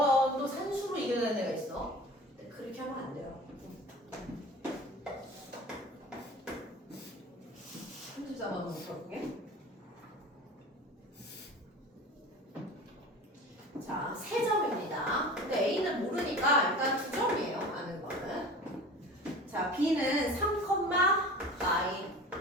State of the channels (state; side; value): normal; both; correlation 0.38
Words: 산수로 이겨내는 애가 있어. 근데 그렇게 하면 안 돼요. 34번을 볼게. 자, 3점입니다. 근데 A는 모르니까 일단 2점이에요. 아는 거는. 자, B는 3, 마이.